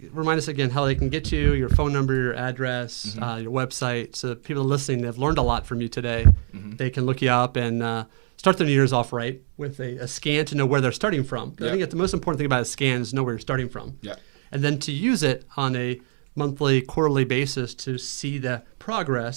remind us again how they can get you, your phone number, your address, your website. So people listening, they've learned a lot from you today. They can look you up and start their New Year's off right with a scan to know where they're starting from. I think that the most important thing about a scan is know where you're starting from. Yeah. And then to use it on a monthly, quarterly basis to see the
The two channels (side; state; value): left; silent; digital silence